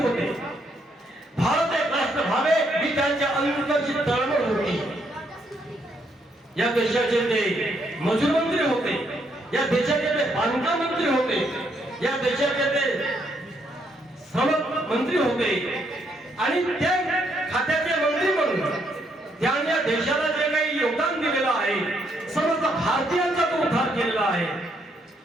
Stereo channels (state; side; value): normal; both; correlation 0.74